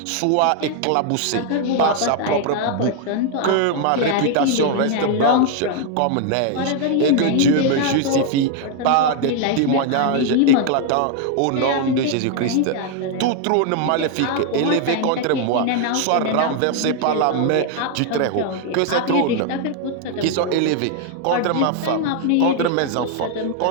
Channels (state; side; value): different; both; correlation 0.00